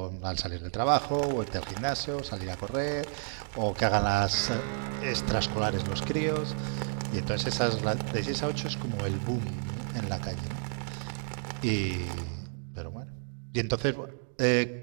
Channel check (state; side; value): silent; left; 57 dB below the other